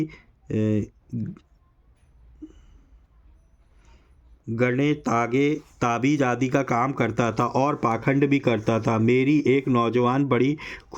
गणे तागे ताबीज आदि का काम करता था और पाखंड भी करता था। मेरी एक नौजवान बड़ी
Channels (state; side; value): identical; both; correlation 1.00